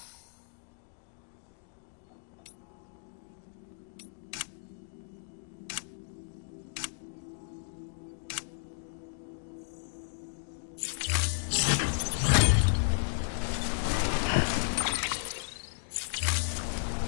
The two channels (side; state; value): right; silent; digital silence